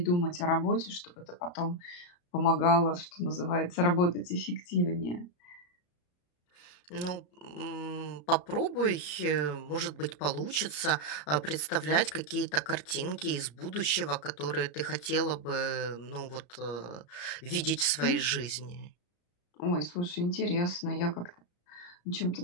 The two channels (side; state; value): right; late; 33 ms